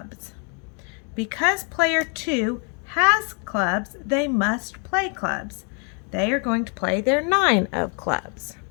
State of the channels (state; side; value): quieter; right; 37.8 dB